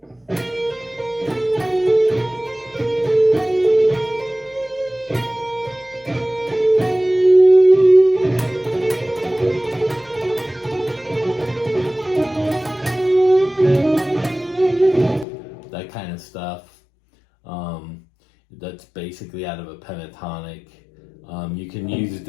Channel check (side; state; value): right; drops out; at 15.2 s